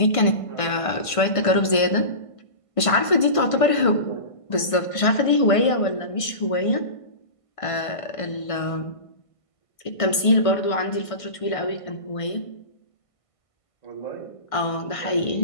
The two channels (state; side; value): late; right; 1.5 ms